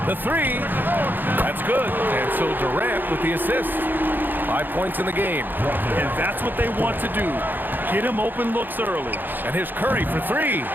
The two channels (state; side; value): late; left; 0.090 ms